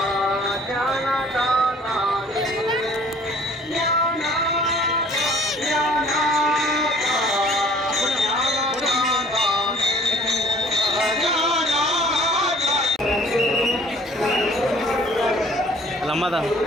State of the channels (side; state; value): both; normal; correlation 0.53